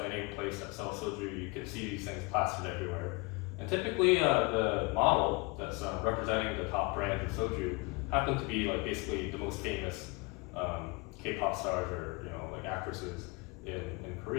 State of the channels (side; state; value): right; quieter; 27.5 dB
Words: any place that sells soju, you can see these things plastered everywhere. And typically, the model that's representing the top brands of soju happen to be like basically the most famous K-pop stars or like actresses in